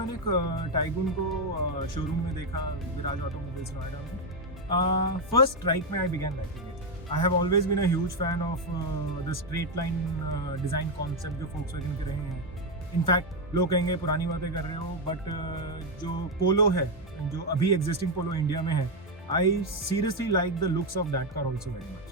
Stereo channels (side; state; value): both; normal; correlation 0.05